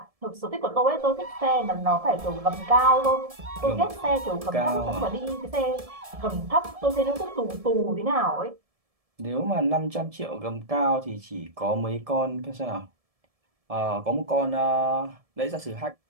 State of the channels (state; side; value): late; left; 1.7 ms